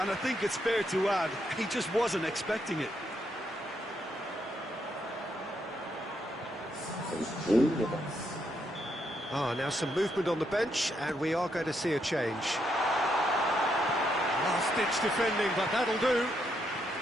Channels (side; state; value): both; normal; correlation 0.78